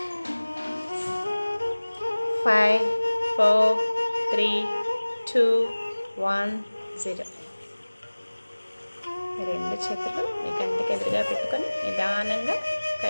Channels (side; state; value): both; inverted; correlation -1.00